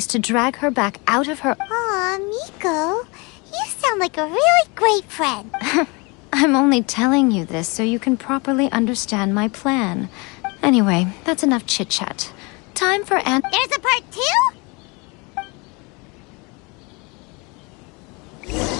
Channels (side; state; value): right; quieter; 28.7 dB